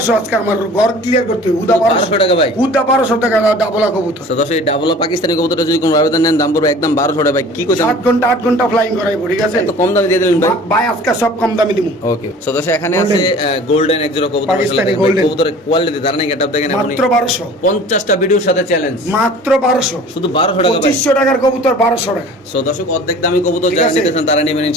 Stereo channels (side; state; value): both; normal; correlation 0.45